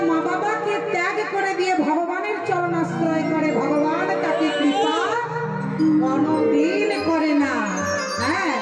মা বাবাকে ত্যাগ করে দিয়ে ভগবানের চরণ আশ্রয় করে, ভগবান তাকে কৃপা কোনদিন করে না। হ্যাঁ,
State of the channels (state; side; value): identical; both; correlation 1.00